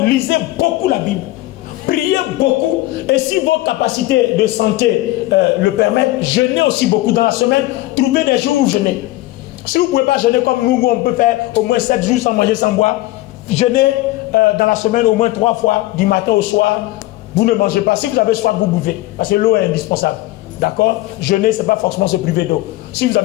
lisez beaucoup la Bible. Priez beaucoup. Et si vos capacités de santé le permettent, jeûnez aussi beaucoup dans la semaine. Trouvez des jours où jeûnez. Si vous ne pouvez pas jeûner comme nous, on peut faire au moins 7 jours sans manger, sans boire. Jeûnez dans la semaine au moins 3 fois, du matin au soir. Vous ne mangez pas. Si vous avez soif, vous buvez. Parce que l'eau est indispensable. D'accord? Jeûner, ce n'est pas forcément se priver d'eau. Si vous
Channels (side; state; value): right; quieter; 17.9 dB